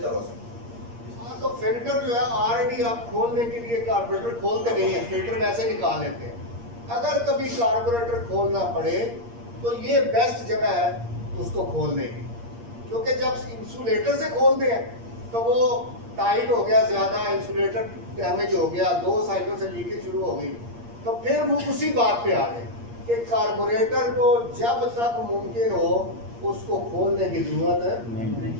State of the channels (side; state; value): left; late; 8.6 ms